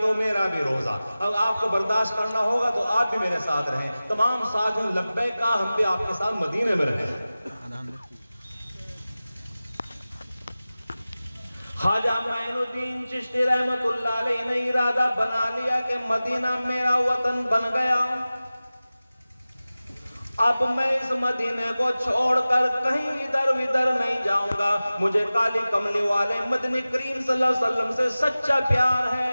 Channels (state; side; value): inverted; both; correlation -0.97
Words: تو میرا بھی روزہ. اب آپ کو برداشت کرنا ہوگا تو آپ بھی میرے ساتھ رہیں. تمام ساتھیوں لبیک کہا، ہم بھی آپ کے ساتھ مدینے میں رہیں. خواجہ معین الدین چشتی رحمت اللہ علیہ نے ارادہ بنا لیا کہ مدینہ میرا وطن بن گیا. اب میں اس مدینے کو چھوڑ کر کہیں ادھر ادھر نہیں جاؤں گا. مجھے کالی کملی والے مدنی کریم صلی اللہ علیہ وسلم سے سچا پیار